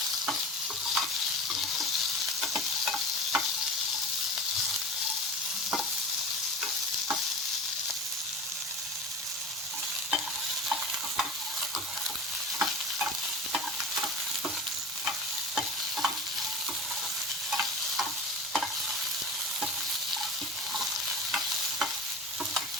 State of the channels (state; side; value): normal; both; correlation 0.33